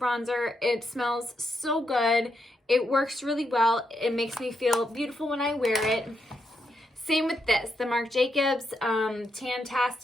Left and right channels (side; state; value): both; normal; correlation 0.81